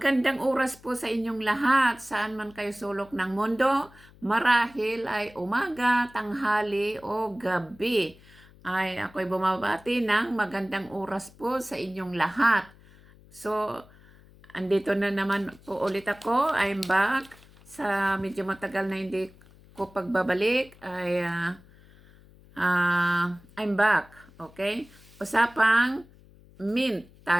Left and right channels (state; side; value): noise; left; hum, 25 dB below the sound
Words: oras po sa inyong lahat, saan man kayo sulok ng mundo. Marahil ay umaga, tanghali o gabi. Ay ako'y bumabati ng magandang oras po sa inyong lahat. So, andito na naman po ulit ako. I'm back. Sa medyo matagal na hindi ko pagbabalik ay I'm back. Okay? Usapang mint